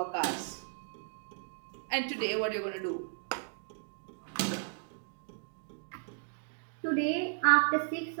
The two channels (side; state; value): left; silent; digital silence